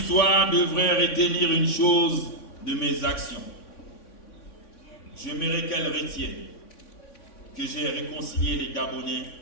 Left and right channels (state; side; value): late; right; 3.5 ms